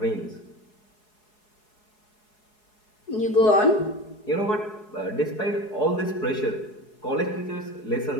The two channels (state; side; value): late; right; 4.7 ms